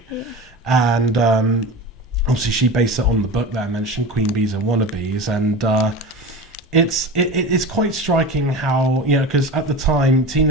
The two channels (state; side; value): normal; both; correlation 0.30